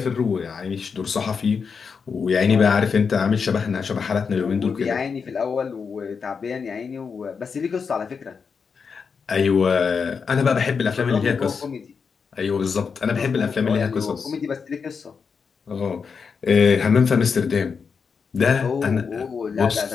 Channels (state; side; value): quieter; right; 5.8 dB